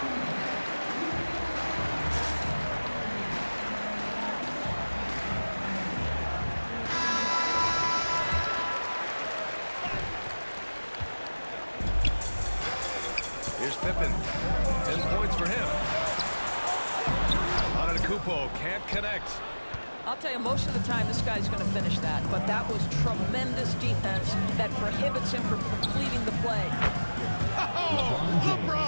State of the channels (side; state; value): both; inverted; correlation -1.00